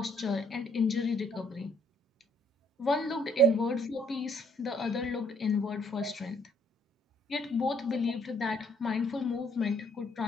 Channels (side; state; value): both; normal; correlation 0.66